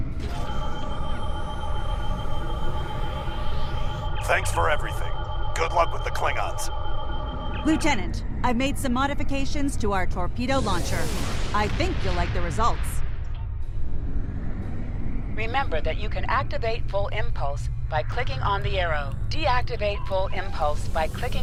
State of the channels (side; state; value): both; identical; correlation 1.00